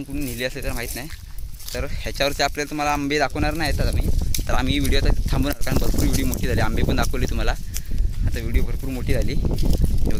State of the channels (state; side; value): identical; both; correlation 1.00